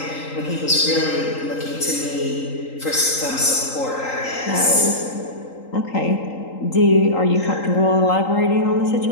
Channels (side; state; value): right; late; 3.8 ms